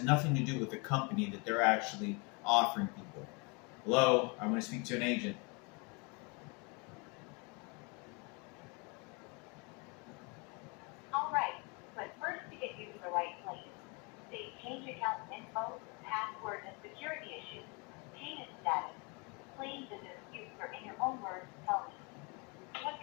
nothing to do with the company that they're actually offering people. Hello, I want to speak to an agent. All right, but first to get you to the right place, say change account info, password, and security issues, payment status, claims and disputes, or in your own words, tell me. What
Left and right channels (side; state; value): right; quieter; 31.2 dB